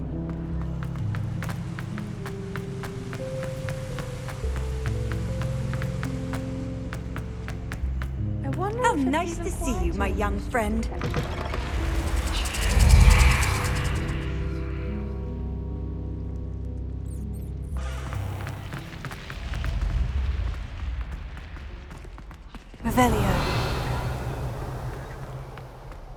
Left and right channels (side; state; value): both; identical; correlation 1.00